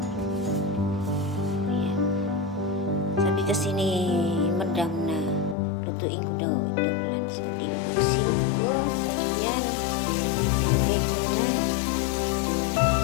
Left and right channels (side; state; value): right; drops out; at 5.6 s